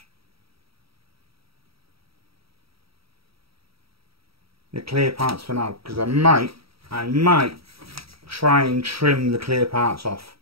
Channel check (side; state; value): left; late; 0.76 ms